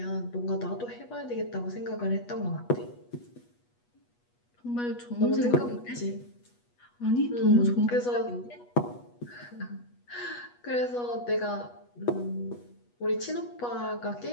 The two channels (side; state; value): right; late; 8.3 ms